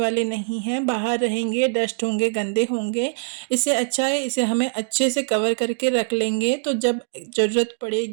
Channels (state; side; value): silent; left; digital silence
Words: नहीं हैं, बाहर रहेंगे, डस्ट होंगे, गंदे होंगे। इससे अच्छा है इसे हमें अच्छे से कवर करके रख लेंगे, तो जब ज़रूरत